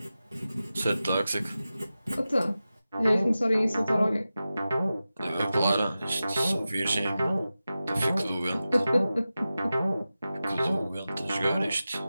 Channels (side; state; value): both; inverted; correlation -0.94